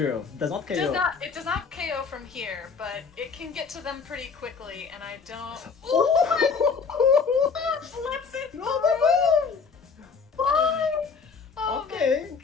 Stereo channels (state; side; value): quieter; right; 5.4 dB